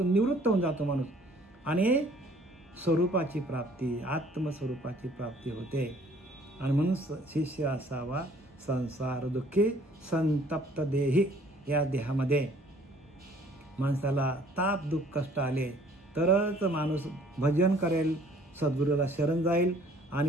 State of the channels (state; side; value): normal; both; correlation 0.57